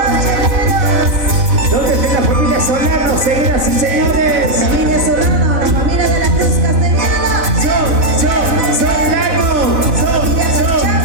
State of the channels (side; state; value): left; late; 4.1 ms